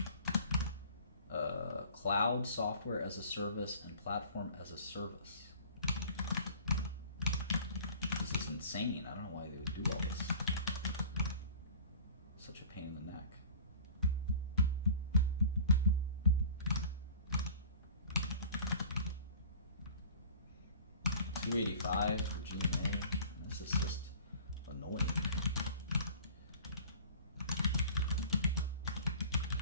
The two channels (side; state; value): both; inverted; correlation -0.44